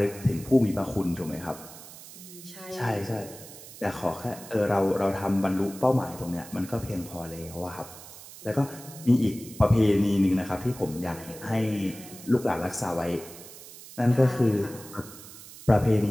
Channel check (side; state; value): right; noise; hiss, 16 dB below the sound